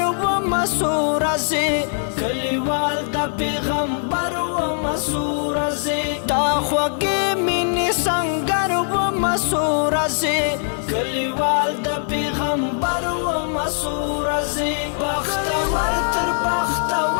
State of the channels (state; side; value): silent; right; digital silence